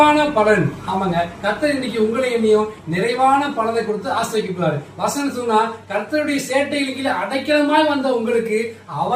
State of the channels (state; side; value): identical; both; correlation 1.00